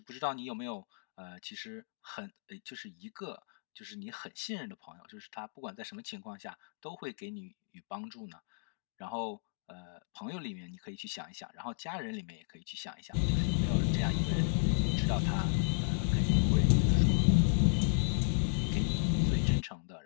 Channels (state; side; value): silent; right; digital silence